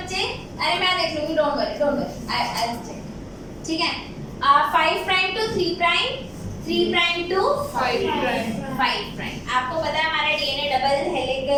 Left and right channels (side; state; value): both; identical; correlation 1.00